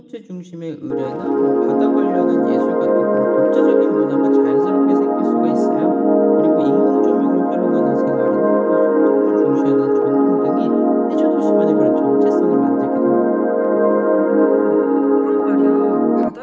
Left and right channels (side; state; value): both; identical; correlation 1.00